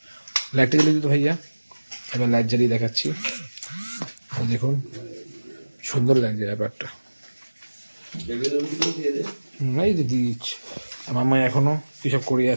লাইটটা জ্বালিয়ে দিত ভাইয়া, এবার লাইট জ্বালিয়ে দেখাচ্ছি। দেখুন সুন্দর লাগছে ব্যাপারটা। এই যে দিচ্ছি মাম্মা এখনো কিসব করে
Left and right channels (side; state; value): both; inverted; correlation -1.00